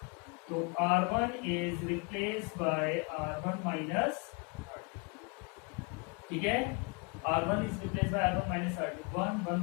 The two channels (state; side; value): quieter; right; 32.3 dB